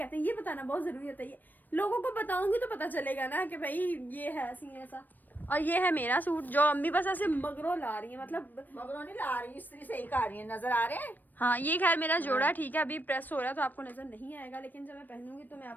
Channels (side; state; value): right; late; 0.089 ms